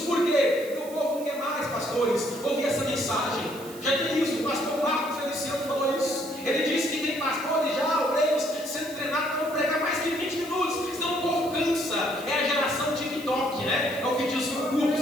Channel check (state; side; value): noise; right; hiss, 17 dB below the sound